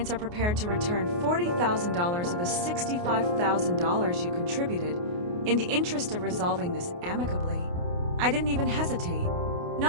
are prepared to return $40,000 of the $65,000 you contributed in the interest of resolving this amicably. I didn't even hesitate.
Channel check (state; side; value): late; left; 28 ms